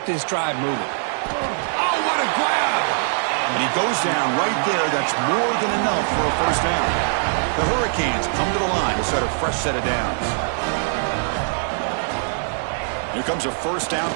this drive moving. Oh, what a grab! And he goes down right there. That's more than enough for a first down. The Hurricanes come to the line to start a fresh set of downs. Here comes a first down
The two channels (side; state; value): left; silent; digital silence